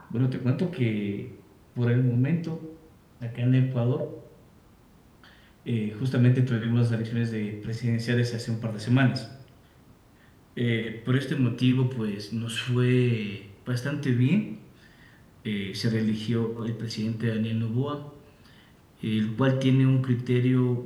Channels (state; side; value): identical; both; correlation 1.00